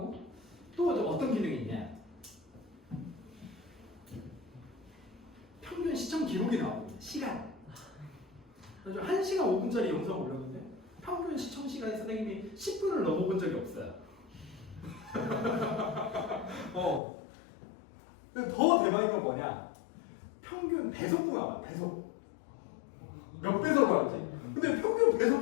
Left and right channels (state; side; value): drops out; right; at 17.0 s